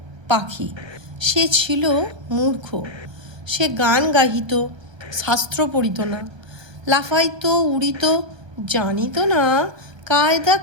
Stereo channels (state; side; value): late; left; 1.3 ms